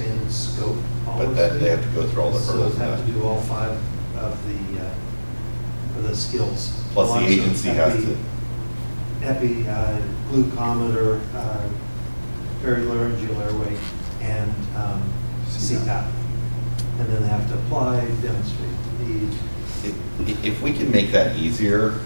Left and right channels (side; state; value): both; inverted; correlation -1.00